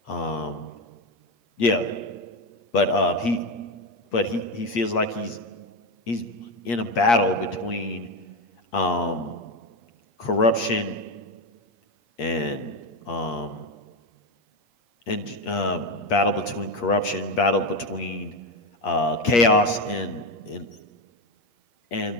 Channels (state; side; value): late; right; 8.5 ms